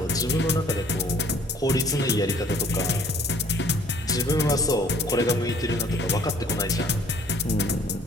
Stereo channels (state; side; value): normal; both; correlation 0.57